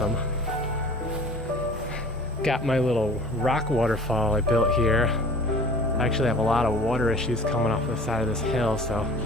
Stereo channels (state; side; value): normal; both; correlation 0.44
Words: Got my little rock waterfall I built here. I actually have a lot of water issues coming off the side of this hill, so